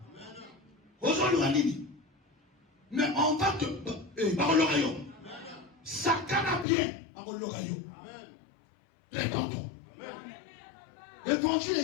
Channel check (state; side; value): drops out; right; at 6.7 s